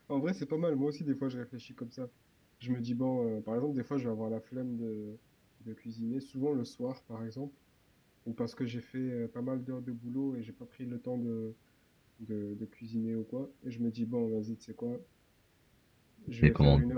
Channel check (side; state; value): both; identical; correlation 1.00